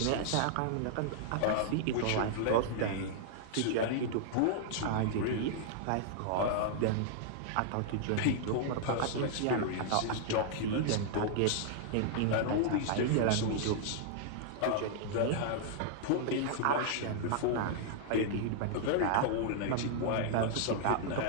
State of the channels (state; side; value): different; both; correlation -0.01